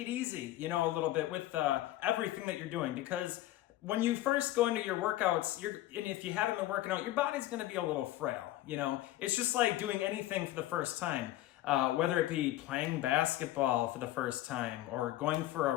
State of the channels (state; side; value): quieter; right; 15.3 dB